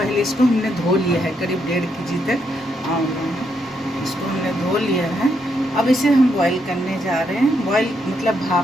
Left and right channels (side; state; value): both; normal; correlation 0.77